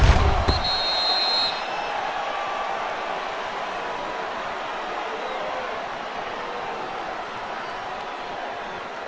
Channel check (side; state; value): both; identical; correlation 1.00